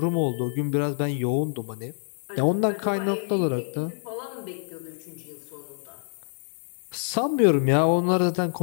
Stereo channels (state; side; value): silent; right; digital silence